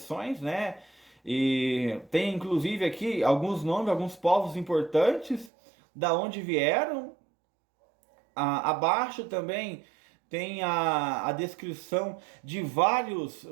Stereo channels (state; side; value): drops out; left; at 5.5 s